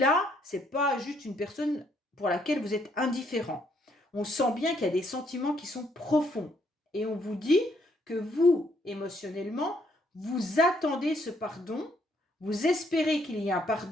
c'est pas juste une personne pour laquelle vous êtes indifférent. On sent bien qu'il y a des sentiments qui sont profonds. Et on vous dit que vous, émotionnellement, vous attendez ce pardon, vous espérez qu'il y ait un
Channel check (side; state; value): both; normal; correlation 0.70